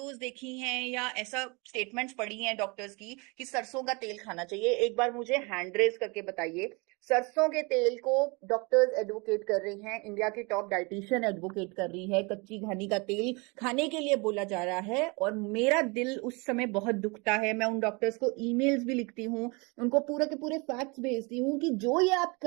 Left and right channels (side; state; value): left; quieter; 28.9 dB